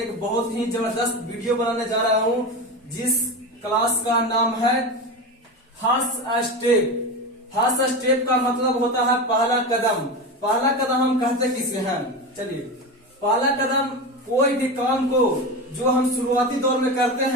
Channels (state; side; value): normal; both; correlation 0.22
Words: बहुत ही जबरदस्त वीडियो बनाने जा रहा हूं, जिस क्लास का नाम है फर्स्ट स्टेप। फर्स्ट स्टेप का मतलब होता है पहला कदम। पहला कदम हम कहते किसे हैं? चलिए, पहला कदम कोई भी काम को जो हम शुरुआती दौर में करते